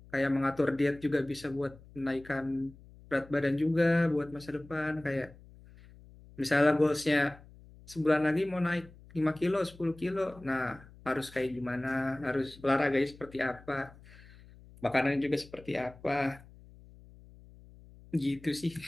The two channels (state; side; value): noise; left; hum, 22 dB below the sound